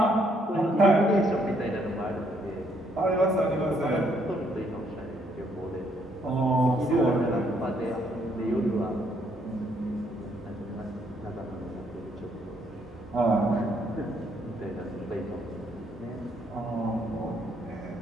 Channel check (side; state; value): both; normal; correlation 0.70